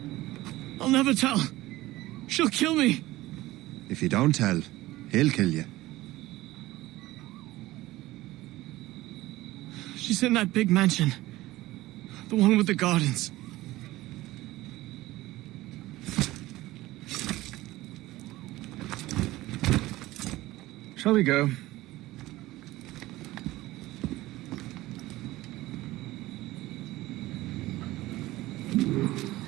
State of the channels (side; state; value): left; quieter; 17.6 dB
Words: I'll never tell. She'll kill me. If you don't tell, he'll kill you. She's in that big mansion. The one with the gardens. Shall we go?